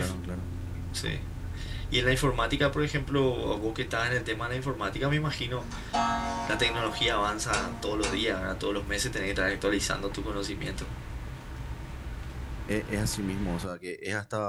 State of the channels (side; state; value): both; identical; correlation 1.00